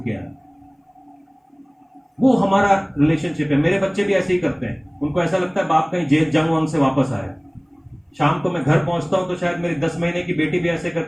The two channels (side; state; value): both; identical; correlation 1.00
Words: के आए। वो हमारा रिलेशनशिप है। मेरे बच्चे भी ऐसे ही करते हैं, उनको ऐसा लगता है बाप कहीं जेल जंग वंग से वापस आया। शाम को मैं घर पहुंचता हूं तो शायद मेरी 10 महीने की बेटी भी ऐसे